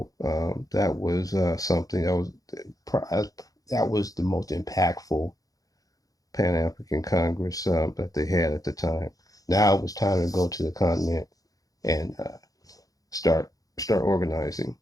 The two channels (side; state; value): right; late; 0.17 ms